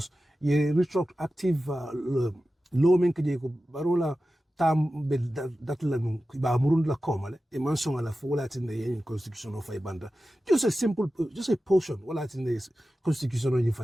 ye retroactive law Barrow tam be that la ba murund la komale e mansong la fola tin the constitution of banda just a portion wala tin the constitution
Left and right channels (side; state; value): both; normal; correlation 0.94